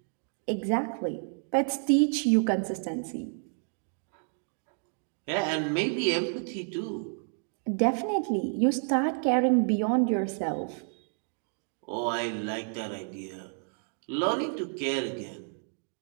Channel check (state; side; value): silent; left; 58 dB below the other